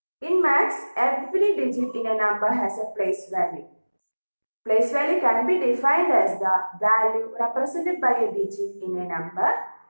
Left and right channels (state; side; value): inverted; both; correlation -1.00